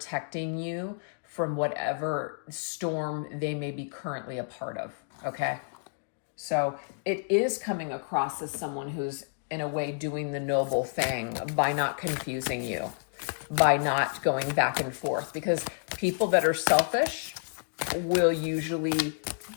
you from whatever storm they may be currently a part of, okay? So it is coming across as someone who's in a way doing the noble thing by not confusing you, by not going back and forth, because people that are selfish will usually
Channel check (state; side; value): silent; right; digital silence